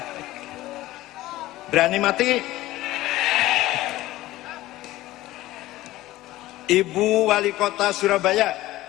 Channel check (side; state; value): right; quieter; 16.7 dB